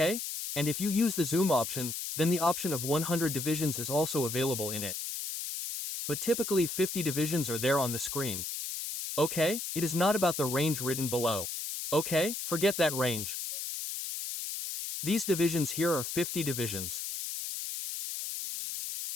And if you use the zoom option, then the option of 100 divisions is also available in it. But typically 50 divisions are there on the screen. Okay? It is not about the range written below. Okay? Forget that range. These divisions here are 50 divisions.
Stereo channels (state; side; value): noise; left; hiss, 5 dB below the sound